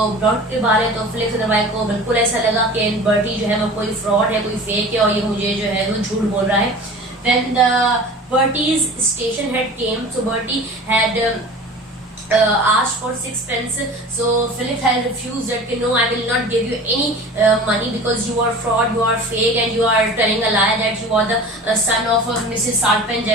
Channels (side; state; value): both; normal; correlation 0.39